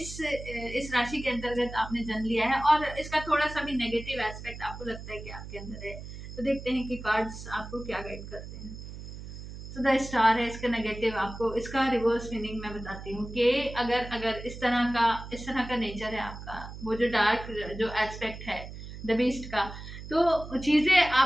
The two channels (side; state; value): right; noise; hum, 11 dB below the sound